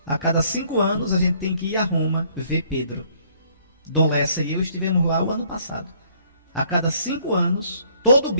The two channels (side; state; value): both; inverted; correlation -0.63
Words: A cada 5 anos a gente tem que ir a Roma ver Pedro. Dom Lessa e eu estivemos lá o ano passado. A cada 5 anos, todo